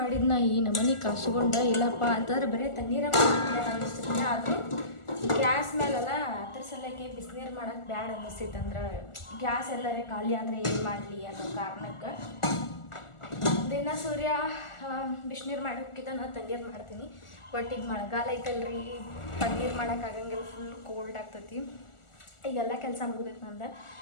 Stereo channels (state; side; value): late; right; 1.4 ms